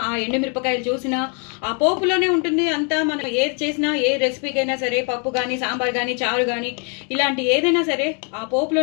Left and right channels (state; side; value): quieter; right; 37.8 dB